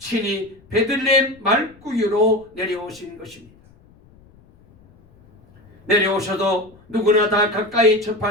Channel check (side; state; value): left; noise; rumble, 28 dB below the sound